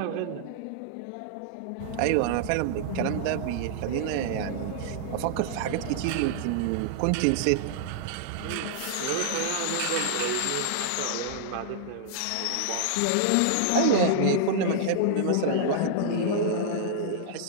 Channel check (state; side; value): different; both; correlation -0.01